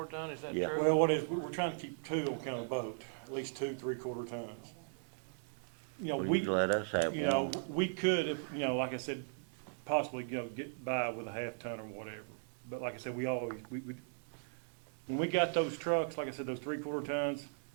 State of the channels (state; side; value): silent; left; digital silence